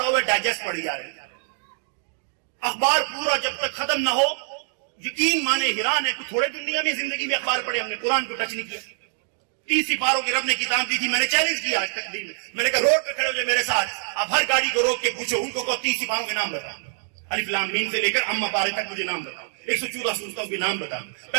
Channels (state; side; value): silent; left; digital silence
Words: ہوا ہے، ڈائجسٹ پڑھی جا رہے ہیں. اخبار پورا جب تک ختم نہ ہو یقین مانے حیران ہے کہ تھوڑے دنیا میں زندگی میں اخبار پڑھے، ہم نے قرآن کو ٹچ نہیں کیا. 30 سپاروں کی رب نے کتاب دی تھی. میں نے چیلنج کیا آج تک دن میں نے کہا روڈ پہ کھڑے ہو جائے میرے ساتھ، آپ ہر گاڑی کو روک کے پوچھو ان کو 30 سپاروں کے نام بتاؤ، الف لام میم سے لے کر اما پارے تک مجھے نام بتاؤ، 114 سورتوں کے نام بتاؤ.